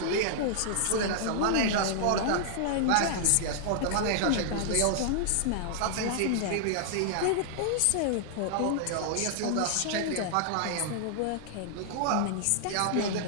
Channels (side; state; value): both; different; correlation -0.01